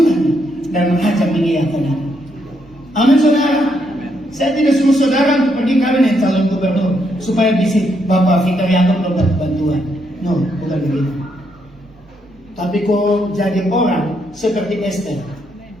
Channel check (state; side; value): normal; both; correlation 0.77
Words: dan raja mengiyakan. Amin saudara. Saya tidak suruh saudara untuk pergi kawin dengan calon gubernur supaya bisa Bapak Victor Yaakob dapat bantuan. No, bukan begitu. Tapi kau jadi orang seperti Esther